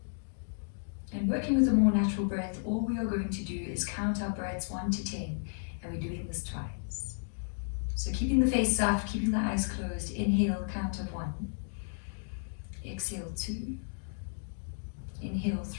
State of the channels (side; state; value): right; silent; digital silence